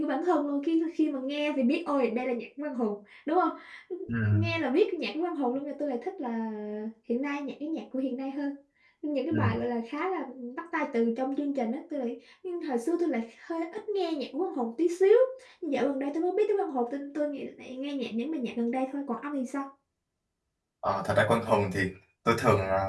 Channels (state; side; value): identical; both; correlation 1.00